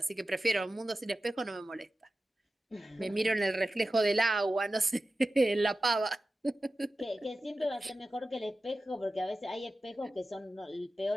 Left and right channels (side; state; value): both; normal; correlation 0.94